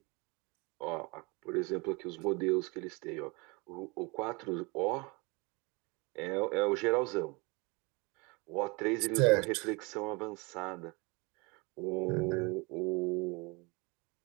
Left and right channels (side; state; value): left; quieter; 27.6 dB